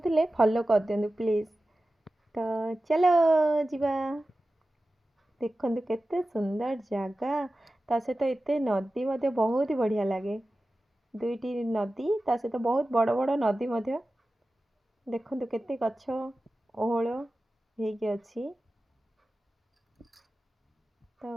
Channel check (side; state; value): both; normal; correlation 0.95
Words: फॉलो कर दियंतु प्लीज़। तो चलो जिबा देखंतु केते सुंदर जगह ता सहित एते नदी मध्य बहुत ही बढ़िया लगे। दुईटी नदी ता सहित बहुत बड़ बड़ नदी मध्य देखंतु केते गछ ओहळ हेकी अछि। तो